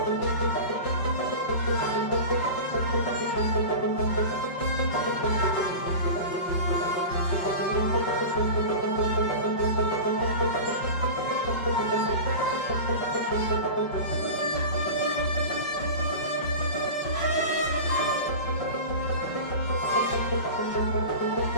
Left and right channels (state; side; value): late; right; 5.3 ms